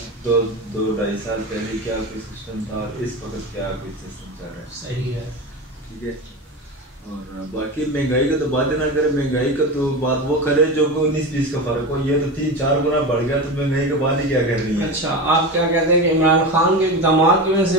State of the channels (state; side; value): normal; both; correlation 0.24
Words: दो ढाई साल पहले क्या कोई सिस्टम था, इस वक्त क्या कोई सिस्टम चल रहा है। सही है, ठीक है। और बाकी महंगाई का तो बात ही ना करें, महंगाई का तो बात वो करे जो 19-20 का फर्क हो। ये तो 3-4 गुना बढ़ गया, तो महंगाई का बात ही क्या करनी है। अच्छा, आप क्या कहते हैं कि इमरान खान के इक़दामात की वजह